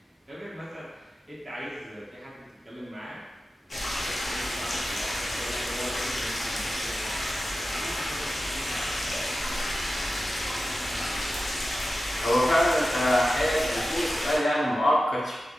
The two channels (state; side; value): normal; both; correlation 0.93